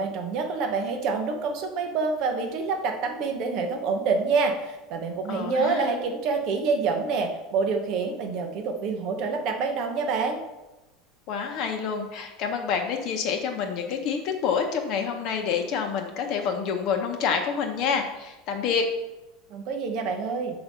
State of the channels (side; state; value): both; normal; correlation 0.31